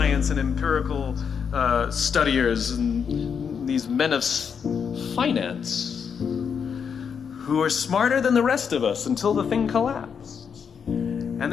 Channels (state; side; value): quieter; right; 6.8 dB